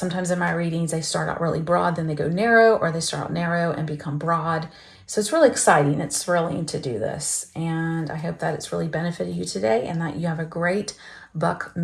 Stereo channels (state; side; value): identical; both; correlation 1.00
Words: in my readings, they start out really broad, then they go narrow, or they start out narrow and become broad. So it's really exciting. It's thrilling to do this. And I hope that it's really benefited you today and that you have a great buck